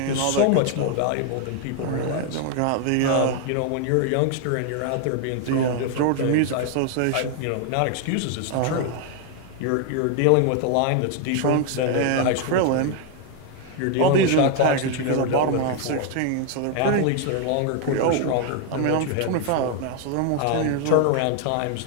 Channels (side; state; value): both; different; correlation 0.00